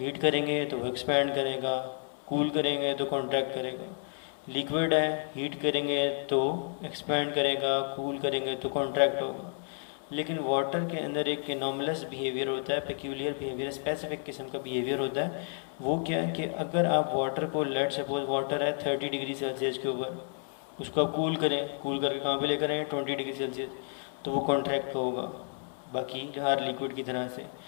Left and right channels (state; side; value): silent; right; 57 dB below the other